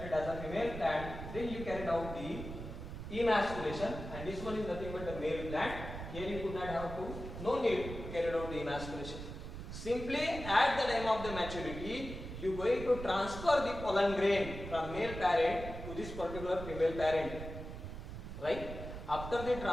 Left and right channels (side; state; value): right; noise; rumble, 9 dB below the sound